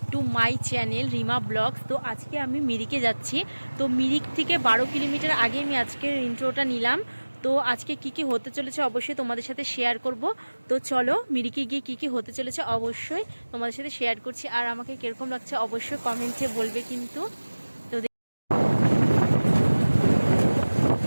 to my channel Rima blogs. তো আজকে আমি মিরিকে যাচ্ছি। তো মিরিক থেকে 12 কিলোমিটার আগে আমি আজকের ইন্ট্রোটা নিলাম। তো আজকে কি কি হতে চলেছে অবশ্যই তোমাদের সাথে শেয়ার করব। তো চলো মিরিকে গিয়ে কি কি হতে চলেছে অবশ্যই তোমাদের সাথে শেয়ার করছি। আর আমাকে কিরকম লাগছে অবশ্যই কমেন্টে বলবে কিন্তু। তো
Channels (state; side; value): inverted; both; correlation -1.00